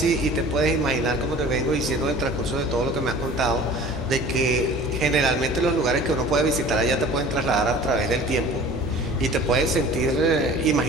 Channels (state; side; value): normal; both; correlation 0.44